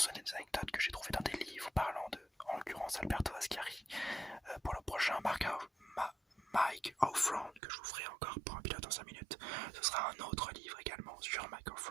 des anecdotes que j'ai trouvées dans des livres parlant de, en l'occurrence, Alberto Ascari. Pour le prochain Mike Offround, que je vous ferai encore pour un pilote en 5 minutes, ce sera un autre livre également sur Mike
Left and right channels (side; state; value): left; drops out; at 7.6 s